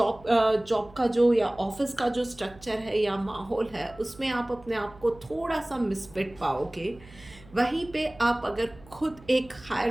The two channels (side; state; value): right; noise; hum, 23 dB below the sound